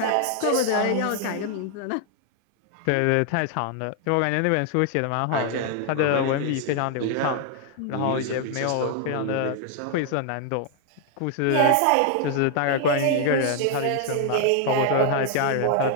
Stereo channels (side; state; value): both; different; correlation 0.00